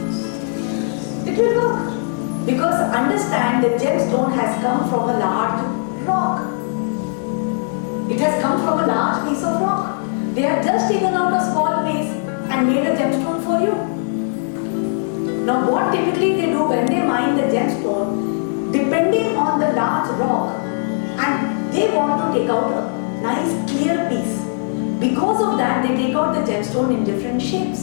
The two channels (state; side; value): silent; right; digital silence